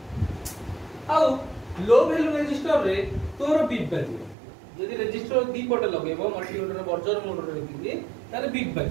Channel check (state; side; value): drops out; left; at 4.4 s